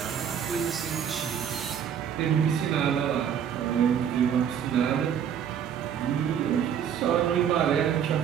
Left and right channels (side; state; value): left; quieter; 8.6 dB